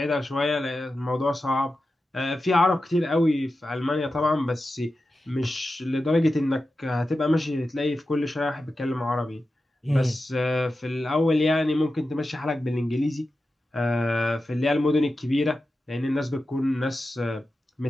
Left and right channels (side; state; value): both; normal; correlation 0.92